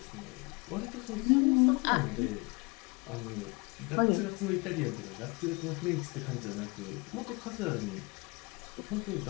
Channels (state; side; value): quieter; right; 27.8 dB